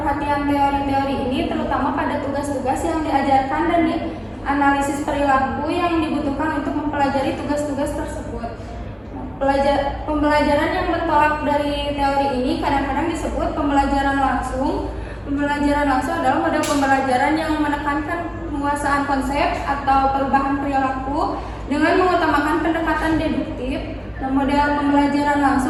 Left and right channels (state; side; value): identical; both; correlation 1.00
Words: teori-teori ini terutama pada tugas-tugas yang diajarkan dan analisis perilaku yang dibutuhkan untuk mempelajari tugas-tugas tersebut. Pembelajaran yang bertolak dari teori ini kadang-kadang disebut pembelajaran langsung. Pembelajaran langsung adalah model pembelajaran yang menekankan penguasaan konsep atau perubahan perilaku dengan mengutamakan pendekatan deduktif. Nah, model pembelajaran